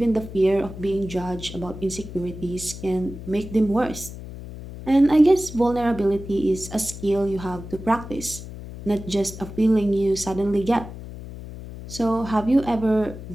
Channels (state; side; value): noise; left; hum, 12 dB below the sound